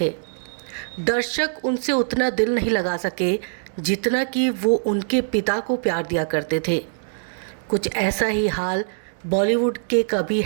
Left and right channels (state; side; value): silent; left; digital silence